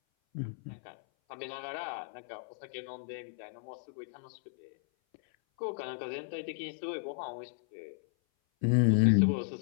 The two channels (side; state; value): right; silent; 55 dB below the other